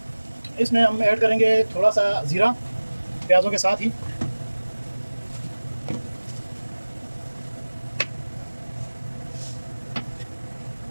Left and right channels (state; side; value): inverted; both; correlation -1.00